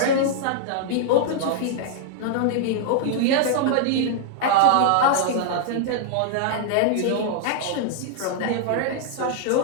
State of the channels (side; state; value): both; different; correlation -0.01